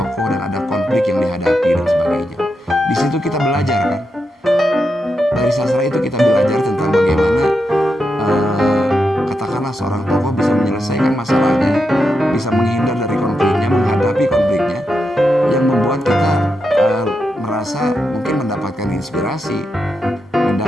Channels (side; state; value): both; normal; correlation 0.85